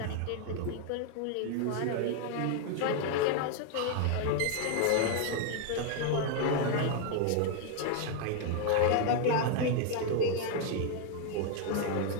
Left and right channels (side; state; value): both; different; correlation 0.00